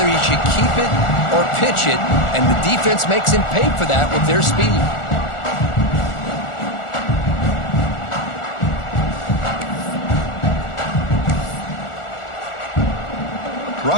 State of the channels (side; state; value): right; late; 1.4 ms